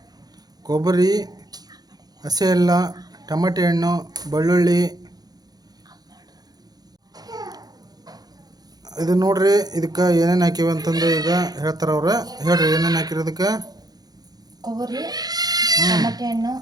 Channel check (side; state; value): left; late; 0.19 ms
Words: ಕೊಬ್ಬರಿ, ಹಸಿ ಎಲ್ಲ, ಟೊಮೆಟೊ ಹಣ್ಣು, ಬೆಳ್ಳುಳ್ಳಿ, ಇದು ನೋಡ್ರಿ, ಇದಕ್ಕೆ ಏನೇನು ಹಾಕಿವಿ ಅಂತಂದು ಈಗ ಹೇಳ್ತಾರೆ ಅವ್ರು. ಹೇಳ್ರಿ ಏನೇನು ಹಾಕಿರೋದಕ್ಕೆ. ಕೊಬ್ಬರಿ, ಟಮಾಟೆ ಹಣ್ಣು,